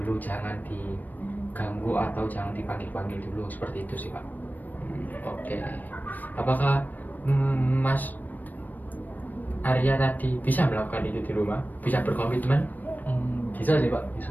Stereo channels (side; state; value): right; late; 0.085 ms